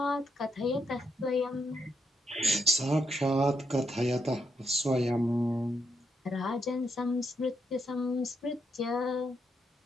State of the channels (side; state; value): both; normal; correlation 0.79